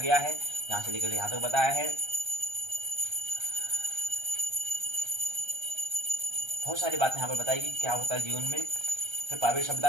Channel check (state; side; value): late; left; 1.3 ms